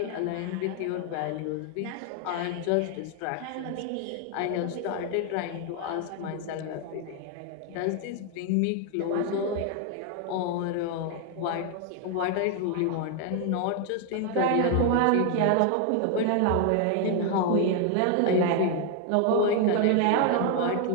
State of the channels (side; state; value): both; different; correlation 0.00